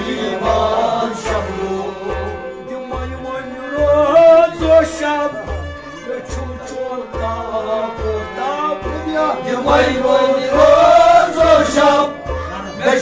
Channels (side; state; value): both; identical; correlation 1.00